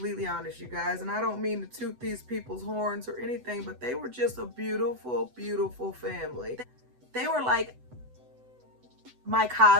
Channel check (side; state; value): left; late; 8.0 ms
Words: honest, you guys, and I don't mean to toot these people's horns or anything, but they were just a beautiful family. They were like my